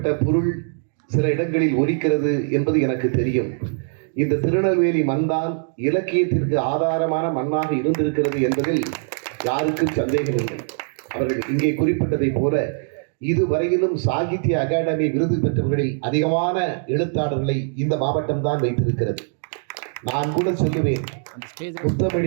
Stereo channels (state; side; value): silent; left; digital silence